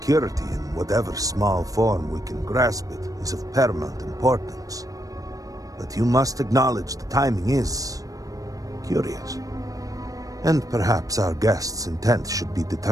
in whatever small form we can grasp it, is of paramount importance. But you must acknowledge the timing is curious. And perhaps our guest's intent should be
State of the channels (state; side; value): late; left; 0.17 ms